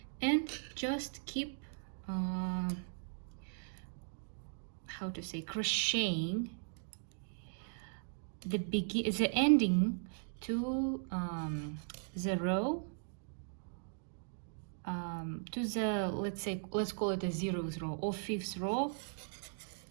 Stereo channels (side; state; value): left; silent; digital silence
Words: and just keep how to say, crocheting the ending to the row, to the, let's call it a 0th row or 5th row